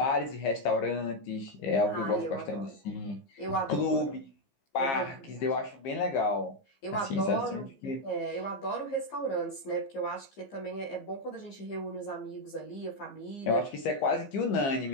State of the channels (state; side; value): late; right; 15 ms